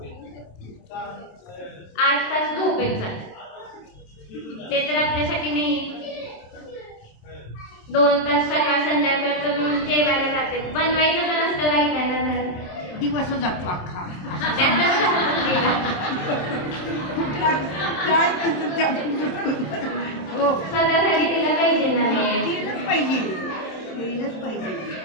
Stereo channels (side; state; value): right; late; 27 ms